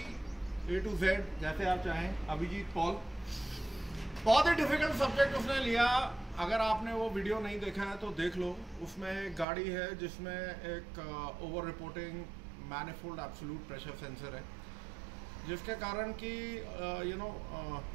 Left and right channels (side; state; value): left; drops out; at 9.5 s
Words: Z जैसे आप चाहें, अभिजीत पॉल। बहुत ही डिफिकल्ट सब्जेक्ट उसने लिया। अगर आपने वो वीडियो नहीं देखा है तो देख लो। उसमें एक गाड़ी है जिसमें एक over reporting manifold absolute pressure sensor है, जिसके कारण कि